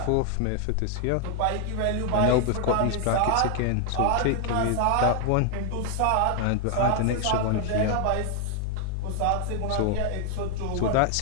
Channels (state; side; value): different; both; correlation 0.00